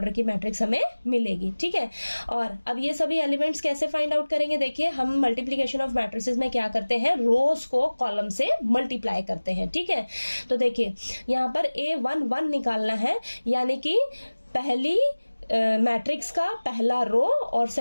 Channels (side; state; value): both; inverted; correlation -1.00